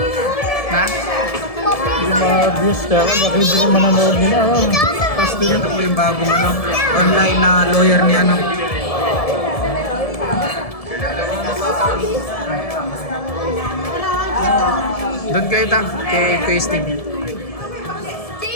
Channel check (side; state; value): right; late; 1.7 ms